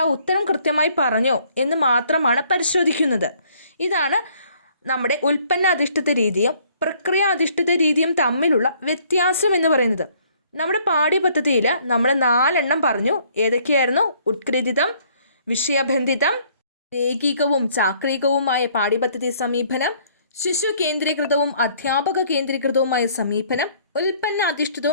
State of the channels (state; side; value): inverted; both; correlation -0.62